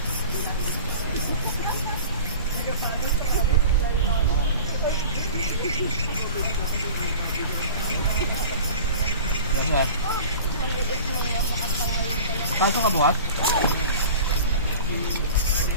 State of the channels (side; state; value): both; inverted; correlation -0.39